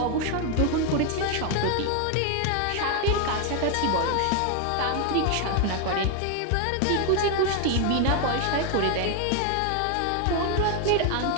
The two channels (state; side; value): different; both; correlation 0.01